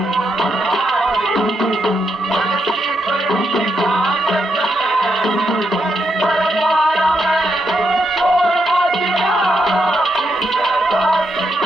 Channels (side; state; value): both; normal; correlation 0.81